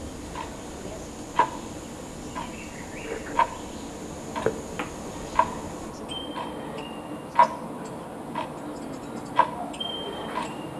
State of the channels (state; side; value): identical; both; correlation 1.00